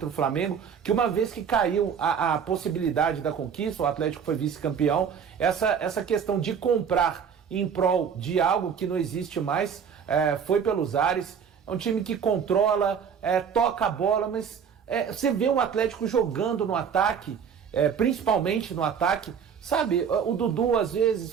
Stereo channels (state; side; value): quieter; left; 7.3 dB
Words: o Flamengo, que uma vez que caiu a possibilidade da conquista, o Atlético foi vice-campeão, essa questão de comprar em prol de algo que não existe mais, foi pelos ares. É um time que controla, toca a bola, mas você vê o Atlético jogando no ataque, principalmente no ataque, sabe? O Dudu às